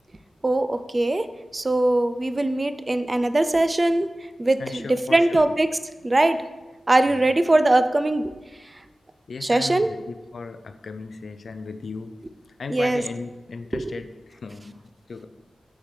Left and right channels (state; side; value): normal; both; correlation 0.98